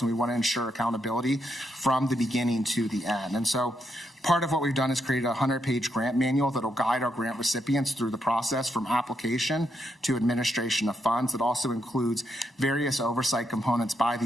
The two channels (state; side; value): normal; both; correlation 0.79